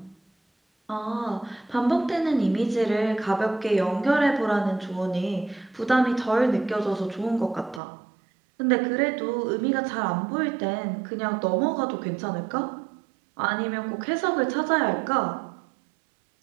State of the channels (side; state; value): left; drops out; at 7.8 s